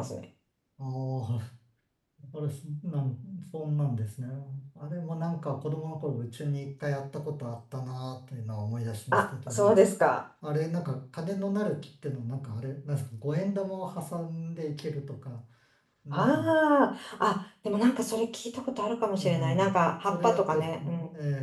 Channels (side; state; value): both; identical; correlation 1.00